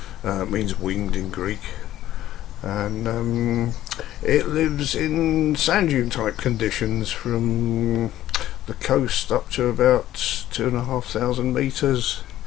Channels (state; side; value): quieter; right; 13.4 dB